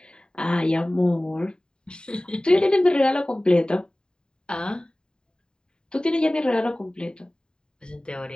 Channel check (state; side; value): late; right; 0.048 ms